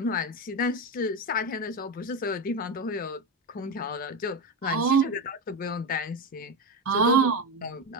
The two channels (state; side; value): normal; both; correlation 0.15